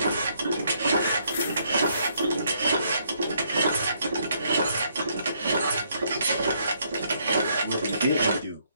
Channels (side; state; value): both; inverted; correlation -0.71